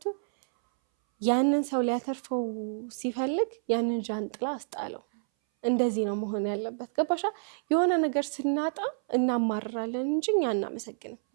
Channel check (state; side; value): silent; left; 59 dB below the other